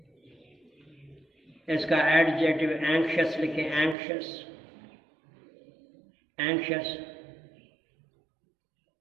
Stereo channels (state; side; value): drops out; left; at 4.0 s